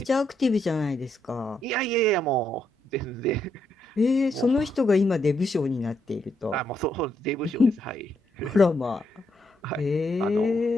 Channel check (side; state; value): both; normal; correlation 0.77